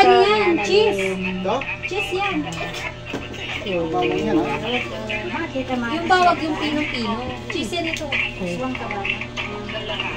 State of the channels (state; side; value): identical; both; correlation 1.00